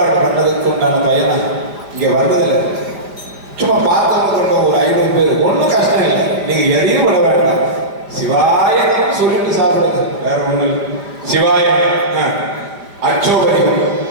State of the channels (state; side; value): late; left; 4.9 ms